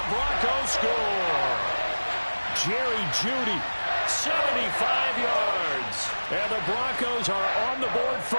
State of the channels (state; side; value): inverted; both; correlation -1.00